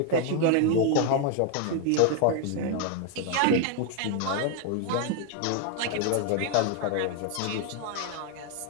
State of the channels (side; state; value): both; different; correlation 0.00